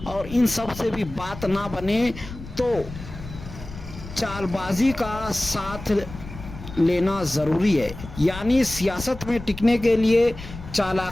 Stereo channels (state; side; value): noise; left; rumble, 13 dB below the sound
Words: اور ان سب سے بھی بات نہ بنے تو چال بازی کا ساتھ لینا ضروری ہے۔ یعنی سیاست میں ٹکنے کے لیے